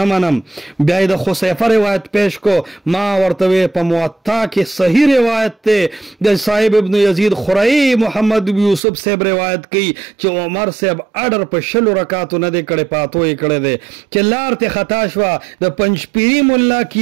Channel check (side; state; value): left; drops out; at 8.8 s